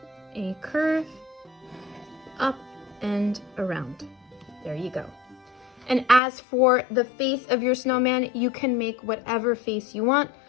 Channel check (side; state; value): right; drops out; at 6.2 s